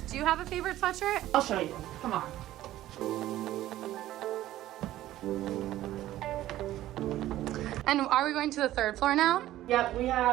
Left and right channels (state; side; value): quieter; left; 14.4 dB